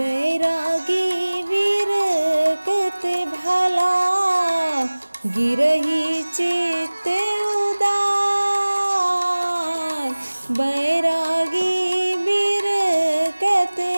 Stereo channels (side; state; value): both; inverted; correlation -1.00